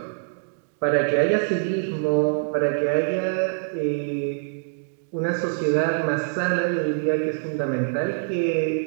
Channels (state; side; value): silent; left; digital silence